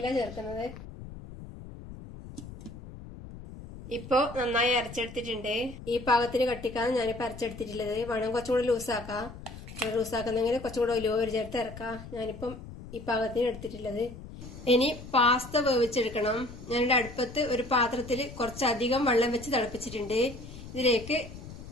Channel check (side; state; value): left; noise; rumble, 13 dB below the sound